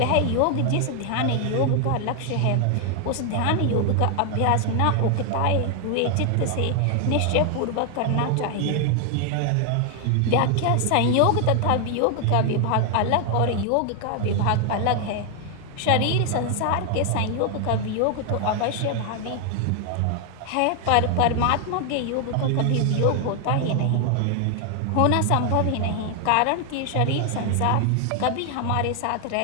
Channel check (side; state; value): both; different; correlation 0.00